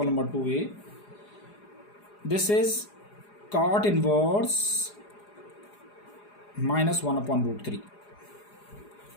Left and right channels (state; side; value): late; right; 4.9 ms